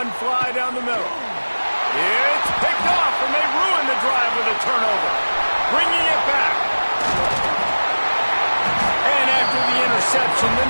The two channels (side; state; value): both; inverted; correlation -1.00